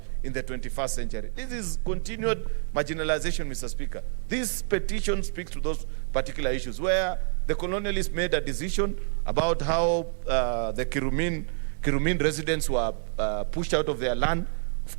in the 21st century. This is continued marginalization, Mr. Speaker. This petition speaks to those particular issues where the colonialists made a decision about how the Kirumin residents were pushed out of their land, of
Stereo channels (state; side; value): silent; left; digital silence